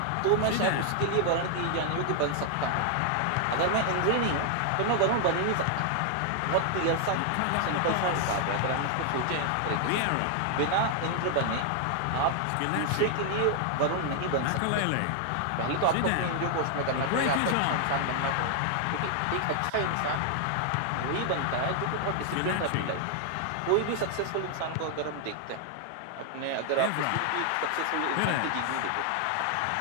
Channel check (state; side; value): different; both; correlation 0.00